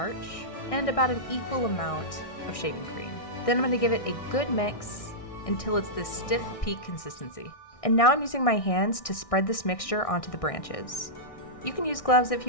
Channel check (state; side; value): late; right; 1.6 ms